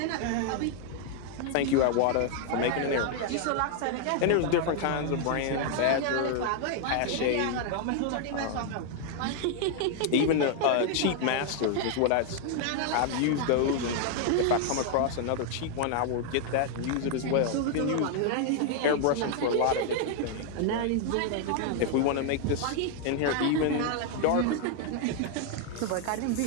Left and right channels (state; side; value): different; both; correlation 0.00